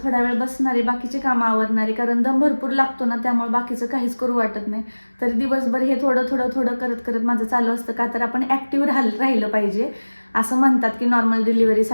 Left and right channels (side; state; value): both; inverted; correlation -1.00